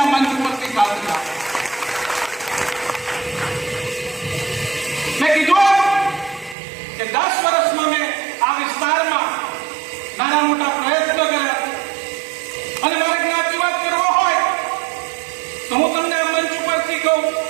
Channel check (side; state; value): left; drops out; at 6.6 s